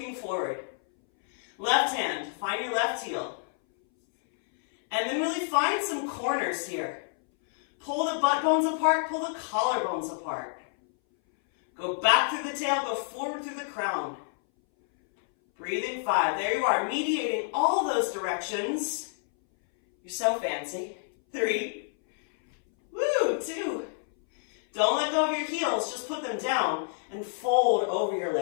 forward. Left hand, find your left heel. And then really find some corners here. Pull the butt bones apart, pull the collarbones apart. Go back through the tail, go forward through the crown. Breathing 5. There you are, mediating all those directions. You're so fancy. 3. Woo, 2. Don't let go of your heels, just put them down and fold over your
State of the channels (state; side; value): silent; right; 59 dB below the other